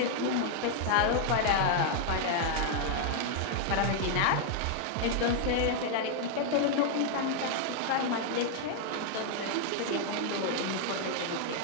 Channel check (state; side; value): different; both; correlation 0.00